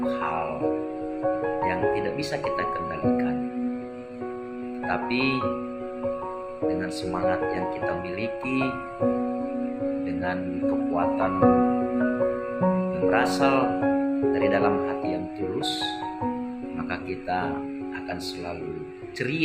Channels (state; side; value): identical; both; correlation 1.00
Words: hal yang tidak bisa kita kendalikan. Tapi dengan semangat yang kita miliki, dengan kekuatan yang berasal dari dalam hati yang tulus, maka kita akan selalu